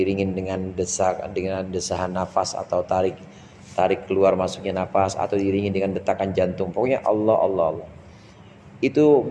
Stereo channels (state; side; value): identical; both; correlation 1.00